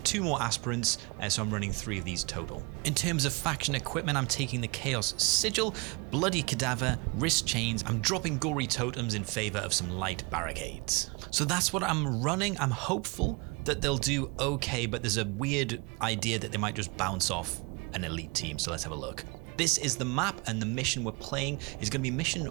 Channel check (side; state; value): left; quieter; 29.1 dB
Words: more aspirants, so I'm running 3 of these total. In terms of faction equipment, I'm taking the Chaos Sigil, Bloody Cadaver, Wrist Chains. I'm dropping Gory Totems in favor of some light barricades. So that's what I'm running. I'm hopeful that they'll do okay, but there's a weird idea that they might just bounce off an elite team, so let's have a look. This is the map, and the mission we're playing is going to be mission